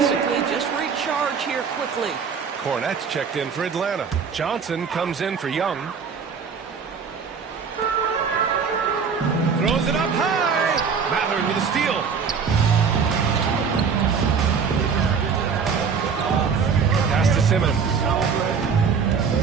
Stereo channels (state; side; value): quieter; left; 6.0 dB